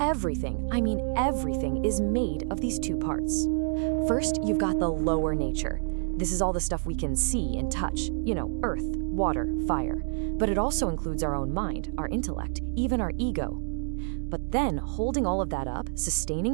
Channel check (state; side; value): silent; left; digital silence